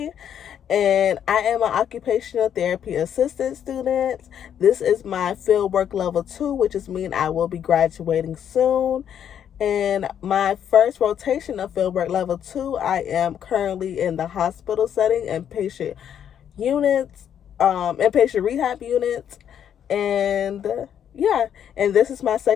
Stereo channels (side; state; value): right; quieter; 9.2 dB